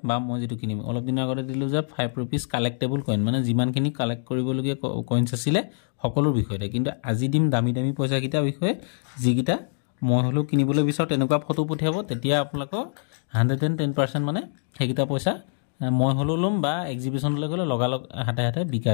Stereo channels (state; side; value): silent; right; digital silence